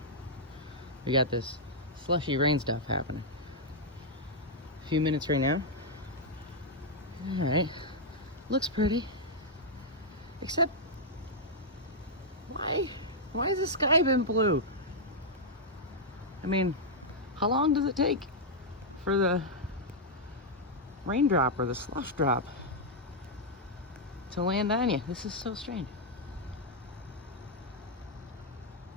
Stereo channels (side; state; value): both; normal; correlation -0.05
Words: We got this slushy rain stuff happening. A few minutes right now. Alright. Looks pretty. Except, why has the sky been blue? I mean, how long does it take for the raindrop or the slush drop to land on you? This is so strange.